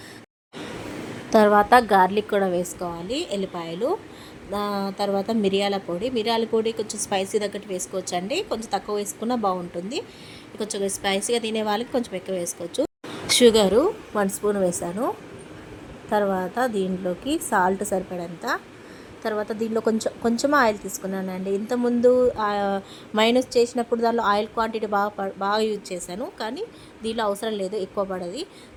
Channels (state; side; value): identical; both; correlation 1.00